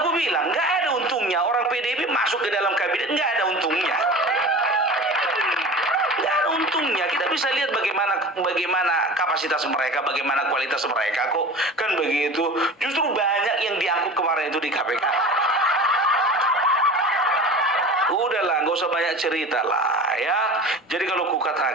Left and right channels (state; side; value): normal; both; correlation 0.35